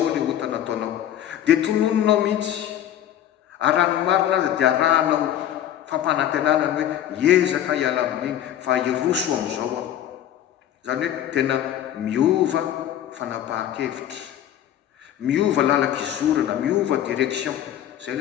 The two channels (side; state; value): right; quieter; 11.2 dB